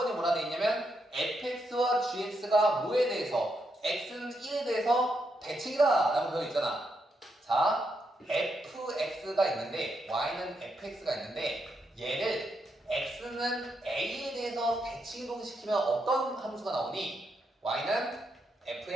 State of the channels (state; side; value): normal; both; correlation 0.81